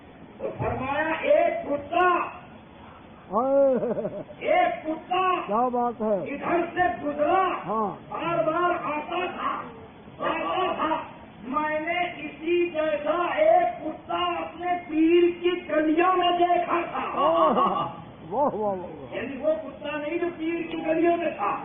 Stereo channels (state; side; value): identical; both; correlation 1.00